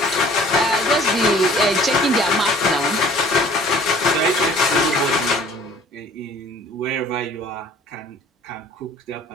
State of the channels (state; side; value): normal; both; correlation 0.52